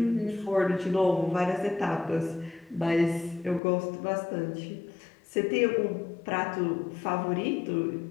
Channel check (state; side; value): drops out; right; at 3.6 s